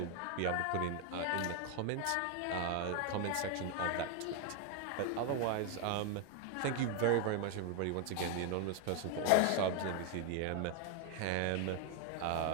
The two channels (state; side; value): different; both; correlation 0.01